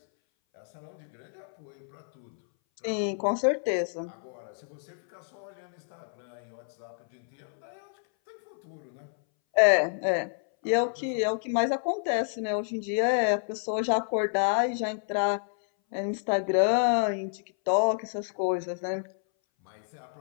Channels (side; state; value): right; silent; 58 dB below the other